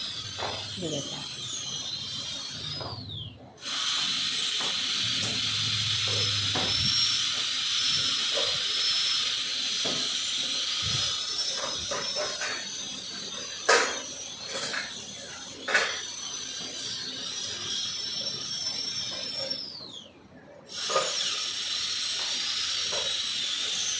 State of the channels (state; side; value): identical; both; correlation 1.00